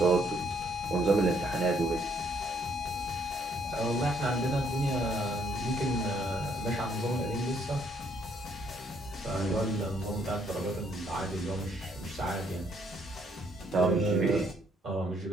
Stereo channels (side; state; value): both; normal; correlation 0.68